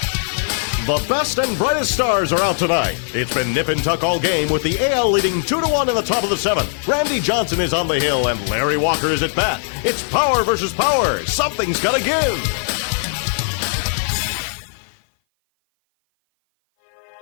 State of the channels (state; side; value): silent; right; 57 dB below the other